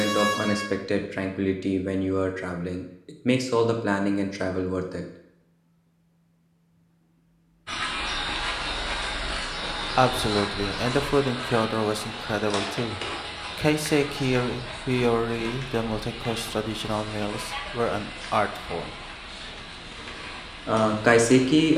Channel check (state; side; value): identical; both; correlation 1.00